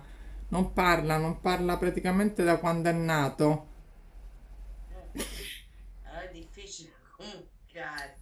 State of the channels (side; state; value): both; identical; correlation 1.00